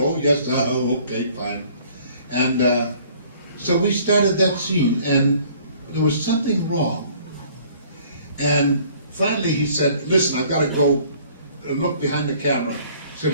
yes, okay, fine. And so we started that scene, and there was something wrong. And finally he said, listen, I've got to go look behind the camera. He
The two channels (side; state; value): both; inverted; correlation -0.56